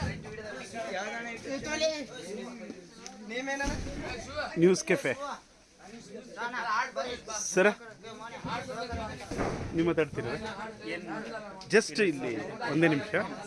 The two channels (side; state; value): both; identical; correlation 1.00